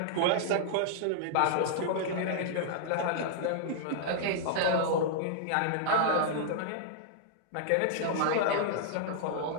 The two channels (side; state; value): both; different; correlation -0.01